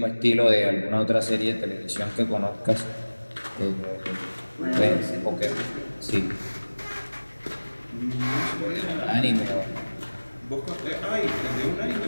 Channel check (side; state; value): both; inverted; correlation -1.00